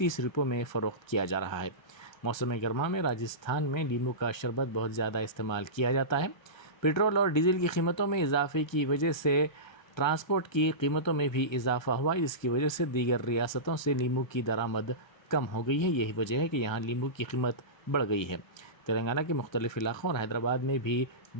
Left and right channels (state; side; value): late; right; 1.3 ms